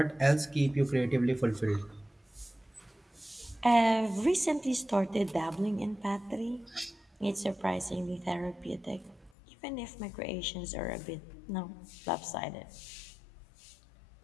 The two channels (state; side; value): drops out; right; at 9.3 s